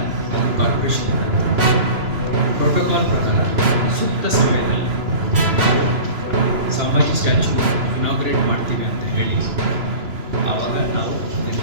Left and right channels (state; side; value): late; left; 3.0 ms